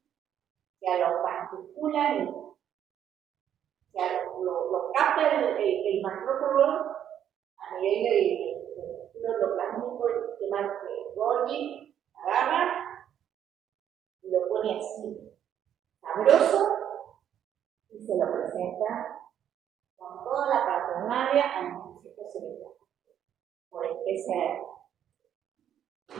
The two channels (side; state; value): left; quieter; 9.9 dB